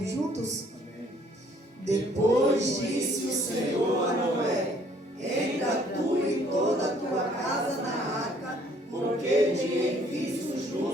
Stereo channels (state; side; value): normal; both; correlation 0.61